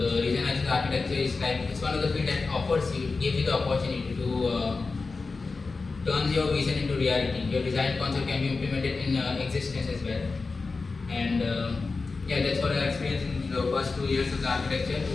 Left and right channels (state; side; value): quieter; right; 4.1 dB